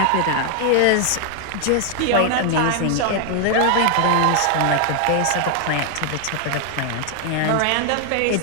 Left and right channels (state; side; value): different; both; correlation 0.00